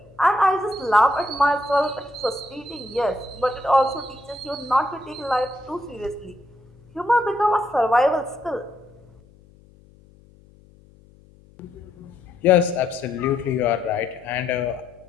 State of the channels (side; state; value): left; noise; hum, 27 dB below the sound